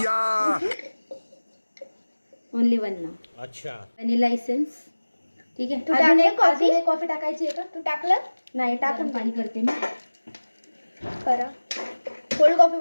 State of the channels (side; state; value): both; inverted; correlation -1.00